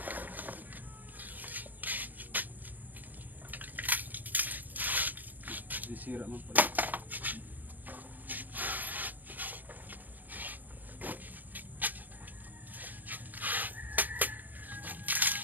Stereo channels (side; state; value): left; late; 0.084 ms